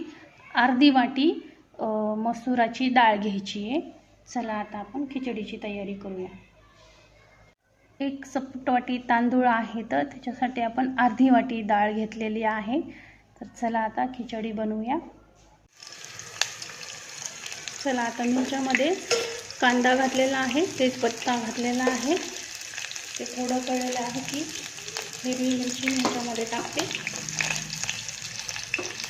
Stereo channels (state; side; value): identical; both; correlation 1.00